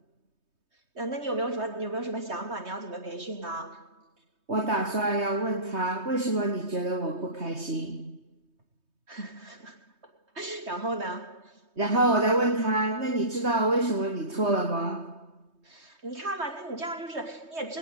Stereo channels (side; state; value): left; late; 3.2 ms